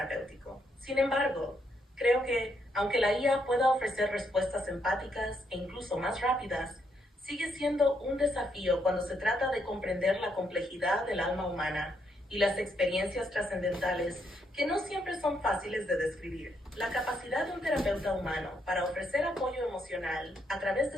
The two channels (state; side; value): normal; both; correlation 0.76